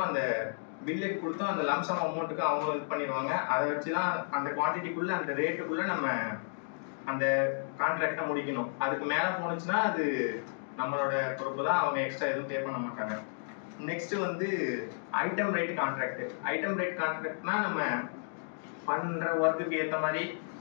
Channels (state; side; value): silent; right; digital silence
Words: அந்த பில்லுக்கு கொடுத்தோம், அந்த லம்சம் அமௌண்ட்டுக்கு அவங்க இது பண்ணிடுவாங்க. அதை வச்சு தான் அந்த குவான்டிட்டிக்குள்ள அந்த ரேட்டுக்குள்ள நம்ம அந்த கான்ட்ராக்டை முடிக்கணும். அதுக்கு மேலே போனுச்சுன்னா அது நம்மளோட பொறுப்பு தான், அவங்க எக்ஸ்ட்ரா எதுவும் பே பண்ண மாட்டாங்க. நெக்ஸ்ட் வந்து item rate contract. Item rate கான்ட்ராக்ட்னா நம்ம பண்ற ஒர்க்குக்கு ஏற்ற மாதிரி